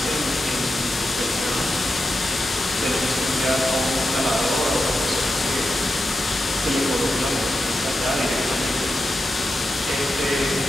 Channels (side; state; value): both; normal; correlation 0.89